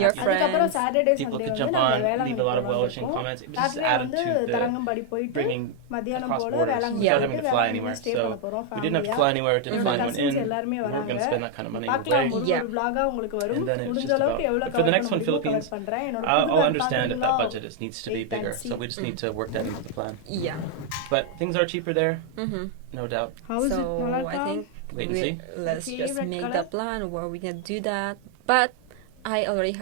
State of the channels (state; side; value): different; both; correlation 0.00